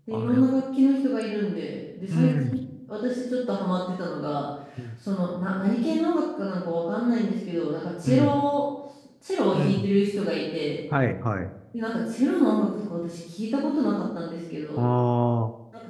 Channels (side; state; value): both; identical; correlation 1.00